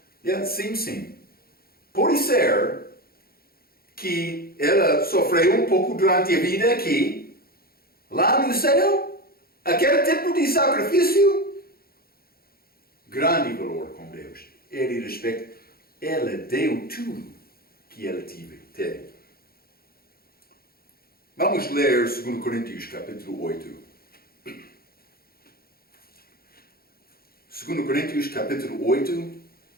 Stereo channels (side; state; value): right; late; 0.44 ms